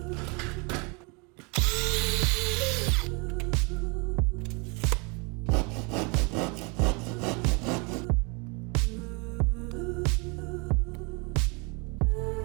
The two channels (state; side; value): quieter; left; 30.8 dB